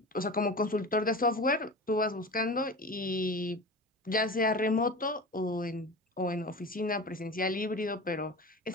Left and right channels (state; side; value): normal; both; correlation 0.32